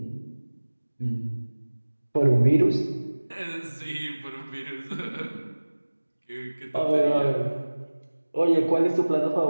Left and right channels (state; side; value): inverted; both; correlation -1.00